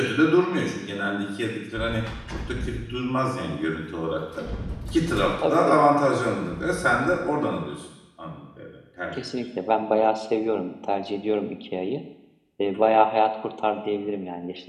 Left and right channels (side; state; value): both; identical; correlation 1.00